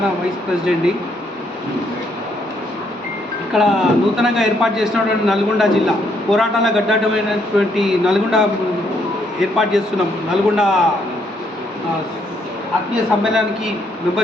వైస్ ప్రెసిడెంట్ని. ఇక్కడ నూతనంగా ఏర్పాటు చేసినటువంటి నల్గొండ జిల్లా పోరాటాల గడ్డమైనటువంటి నల్గొండ ఏర్పాటు చేస్తున్నాం. నల్గొండ ఆత్మీయ సమ్మేళనానికి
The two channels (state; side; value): normal; both; correlation 0.72